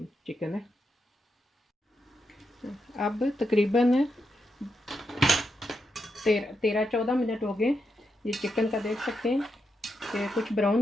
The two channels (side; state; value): both; normal; correlation 0.84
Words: चिकन है। अब तकरीबन 13-14 मिनट हो गए। ये चिकन का देख सकते हैं कि कुछ